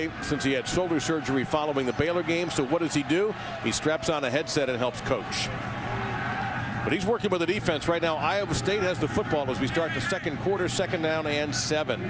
since he had shoulder surgery following the Baylor game. So what does he do? He straps on a headset and helps coach. But he's working with the defense right now. Iowa State has the football as we start the second quarter, 2nd down and 7.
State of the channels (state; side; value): identical; both; correlation 1.00